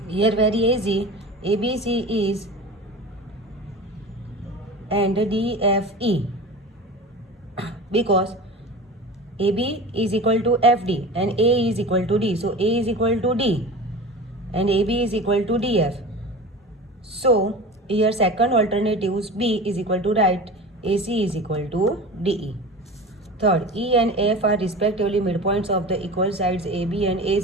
here very easy, ABC is and DFE, because AB is equal to FD and A is equal to D. So A is equal to D and AB is equal to DF. So here second alternatives B is equal to right, AC is equal to DE. Third, E and F are respectively midpoints of the equal sides AB and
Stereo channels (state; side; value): normal; both; correlation 0.33